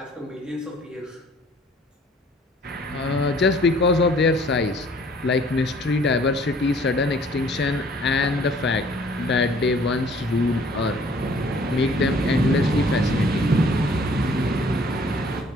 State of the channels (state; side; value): normal; both; correlation 0.57